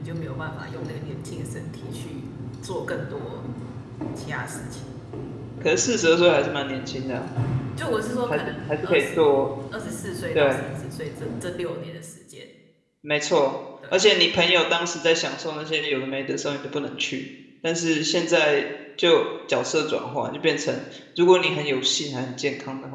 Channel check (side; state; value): both; identical; correlation 1.00